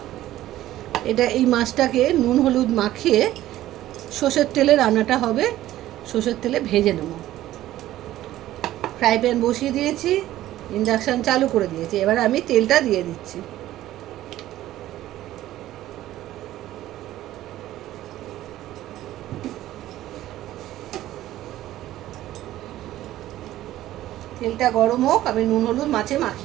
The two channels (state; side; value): quieter; left; 14.3 dB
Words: এই মাছটাকে নুন হলুদ মাখিয়ে সর্ষের তেলে রান্নাটা হবে, সর্ষের তেলে ভেজে নেব। ফ্রাই প্যান বসিয়ে দিয়েছি, ইন্ডাকশান চালু করে দিয়েছি। এবার আমি তেলটা দিয়ে দিচ্ছি। তেলটা গরম হোক, আমি নুন হলুদ মাছে